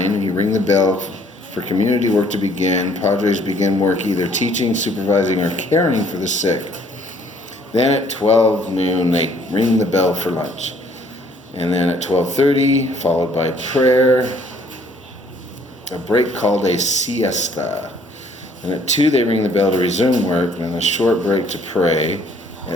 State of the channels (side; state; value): both; normal; correlation 0.61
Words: you ring the bell for community work to begin. Padres begin work either teaching, supervising, or caring for the sick. Then at 12 noon, they ring the bell for lunch. And then at 12:30, followed by prayer, a break called a siesta. And at 2, they ring the bell to resume work, and then a short break to pray